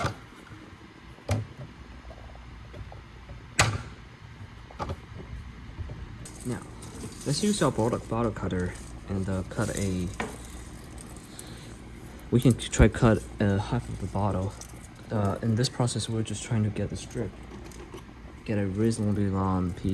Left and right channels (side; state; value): both; identical; correlation 1.00